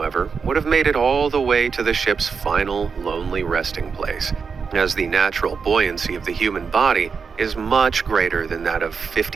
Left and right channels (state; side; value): quieter; left; 5.6 dB